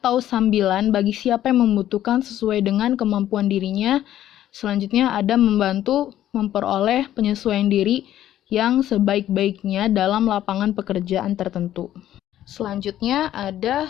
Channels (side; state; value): right; quieter; 12.3 dB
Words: sambilan bagi siapa yang membutuhkan sesuai dengan kemampuan dirinya. Selanjutnya ada membantu memperoleh penyesuaian diri yang sebaik-baiknya dalam lapangan pekerjaan tertentu. Selanjutnya